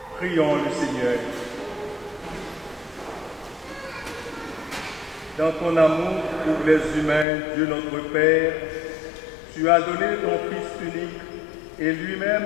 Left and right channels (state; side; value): drops out; right; at 7.2 s